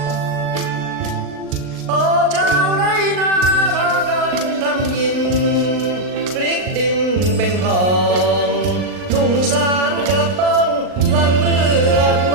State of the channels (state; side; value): late; left; 39 ms